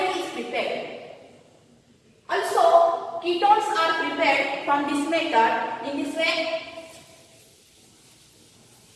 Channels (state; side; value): identical; both; correlation 1.00